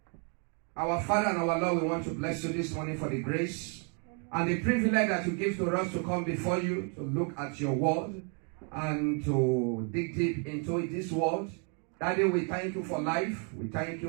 Our Father and our Lord, we want to bless you this morning for the grace and the privilege that you give to us to come before you, to look at your word and to dig deep into this word. Daddy, we thank you for life. We thank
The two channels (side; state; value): left; quieter; 39.9 dB